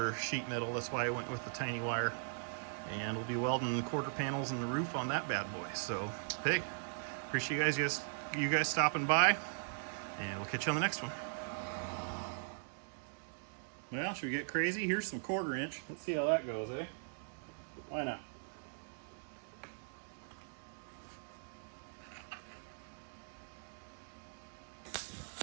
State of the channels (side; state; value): left; silent; digital silence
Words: sheet metal. That's why I went with the tiny wire, and we'll be welding quarter panels in the roof on that bad boy. So hey, appreciate you guys stopping by, and we'll catch you on the next one. Well, should we get crazy? Here's some 1/4 inch. Let's see how that goes, eh? Why not?